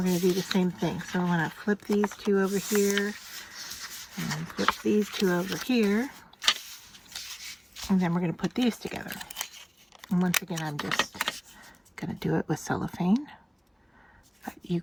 going to do the same thing. So I'm going to flip these 2 over here, and flip these 2 over here, and then we're going to put these together. And once again, I'm just going to do it with cellophane, but you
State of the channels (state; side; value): identical; both; correlation 1.00